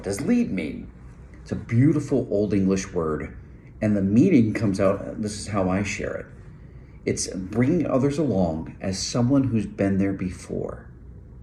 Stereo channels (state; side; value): identical; both; correlation 1.00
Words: does lead mean? It's a beautiful Old English word, and the meaning comes out, this is how I share it. It's bringing others along as someone who's been there before.